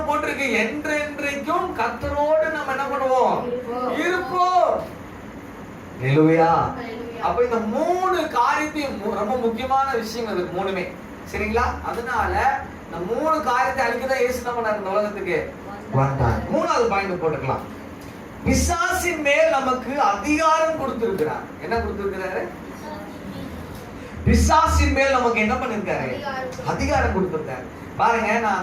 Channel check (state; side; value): identical; both; correlation 1.00